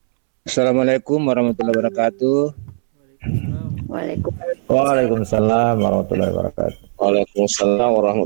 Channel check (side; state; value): left; silent; 68 dB below the other